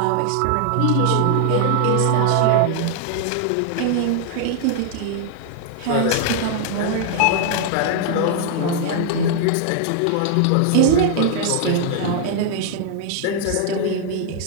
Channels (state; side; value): different; both; correlation 0.00